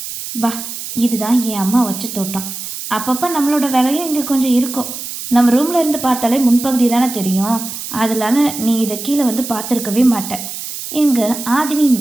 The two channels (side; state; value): right; noise; hiss, 8 dB below the sound